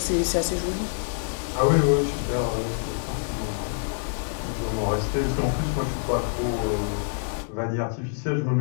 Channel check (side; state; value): right; silent; digital silence